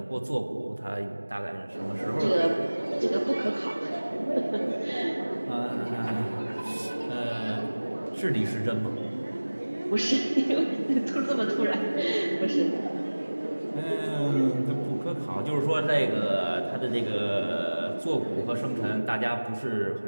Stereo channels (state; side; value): inverted; both; correlation -1.00